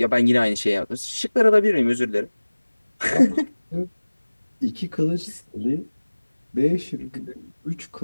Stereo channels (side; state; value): both; inverted; correlation -1.00